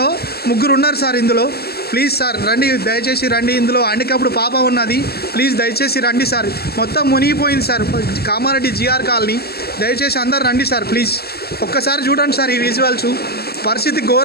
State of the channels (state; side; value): late; right; 0.46 ms